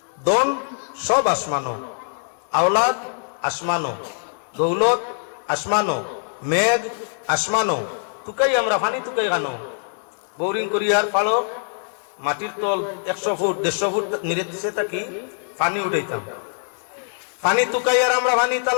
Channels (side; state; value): right; silent; digital silence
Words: দন সব আসমানো, আওলাদ আসমানো, দৌলত আসমানো, মেঘ আসমানো, টুকাই আমরা ফানি টুকাই গানো। বোরিং করিয়ার পালো মাটির তল 100 ফুট 150 ফুট নিরে দিছে থাকি পানি উঠাইতাম, পানি টুকাই আর আমরা পানি